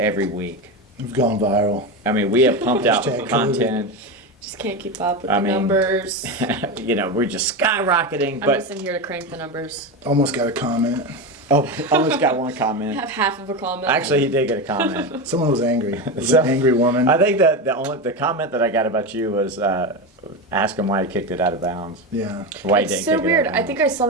week. We've gone viral. I mean, we have pumped out Hashtag content. Just can't keep up with I the mean, numbers. You know, we're just skyrocketing. I'm But just in here to crank the numbers. Almost got a comment. oh, almost got one I comment. have half of a comment. Actually, he did get a comment. Someone was angry. It was So, an angry woman. I think that the comment that I got about you was ask him why he kicked it out of bounds. Yeah. Why he It's didn't so kick weird. It out of I bounds. think I saw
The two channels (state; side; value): normal; both; correlation 0.17